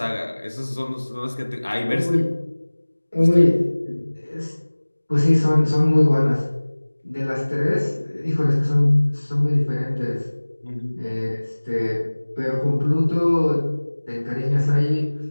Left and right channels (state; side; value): inverted; both; correlation -1.00